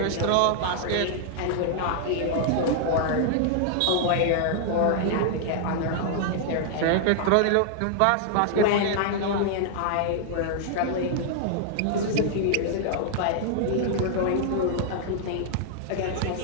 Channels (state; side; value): different; both; correlation -0.01